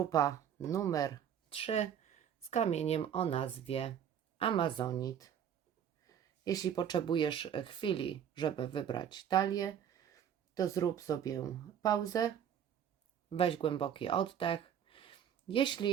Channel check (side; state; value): left; quieter; 9.0 dB